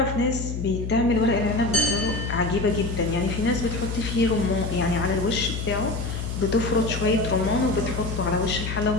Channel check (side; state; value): left; noise; hum, 4 dB below the sound